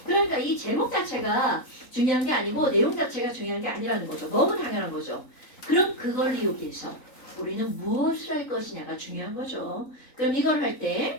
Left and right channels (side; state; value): right; late; 3.9 ms